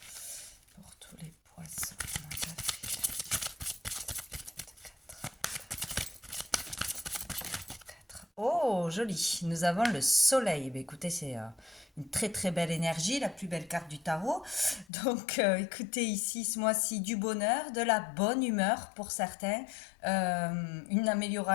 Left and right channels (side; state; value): right; drops out; at 14.9 s